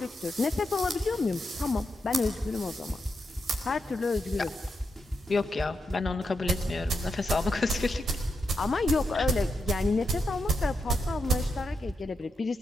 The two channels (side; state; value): both; normal; correlation 0.84